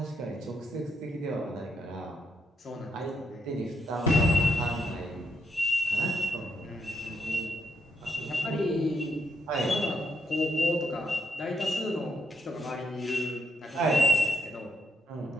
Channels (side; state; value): both; normal; correlation 0.78